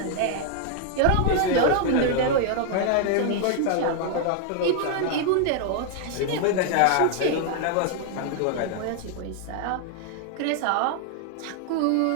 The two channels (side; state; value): both; different; correlation 0.00